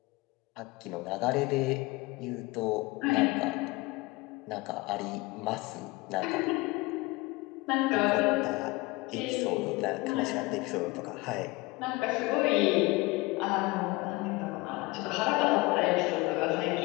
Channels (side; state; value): right; quieter; 23.0 dB